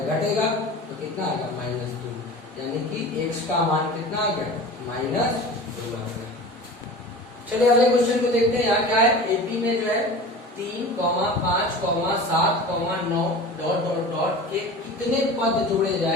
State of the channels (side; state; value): both; normal; correlation 0.36